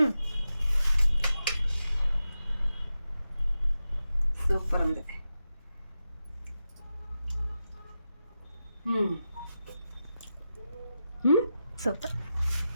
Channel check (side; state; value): both; inverted; correlation -0.90